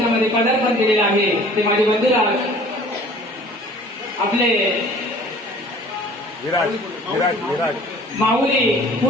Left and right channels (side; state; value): both; normal; correlation 0.49